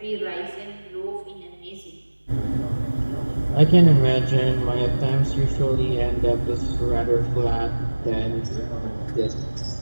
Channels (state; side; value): inverted; both; correlation -1.00